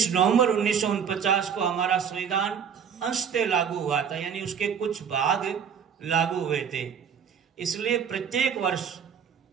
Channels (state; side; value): quieter; left; 7.4 dB